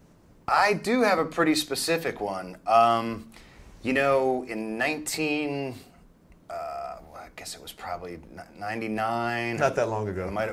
I do have a pretty specific one. You know, in I guess it was probably 99. Not that long ago. Might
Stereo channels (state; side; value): identical; both; correlation 1.00